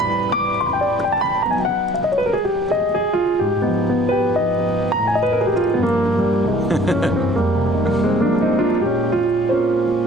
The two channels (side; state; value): both; normal; correlation 0.54